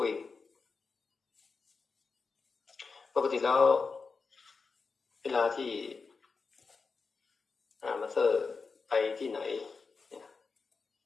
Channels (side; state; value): right; quieter; 4.7 dB